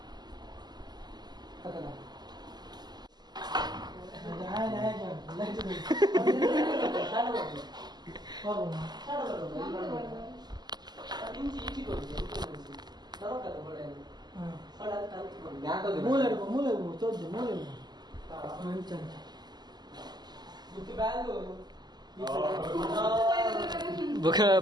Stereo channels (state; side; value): late; left; 0.20 ms